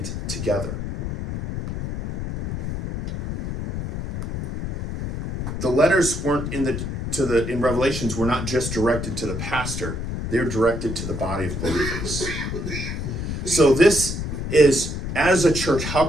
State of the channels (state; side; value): noise; left; rumble, 5 dB below the sound